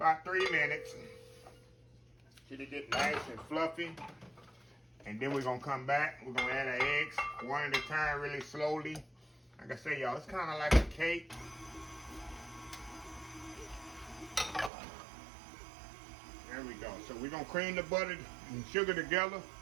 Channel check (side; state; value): left; drops out; at 14.7 s